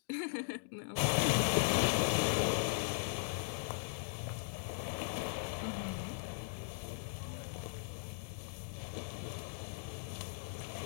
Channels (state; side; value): silent; right; digital silence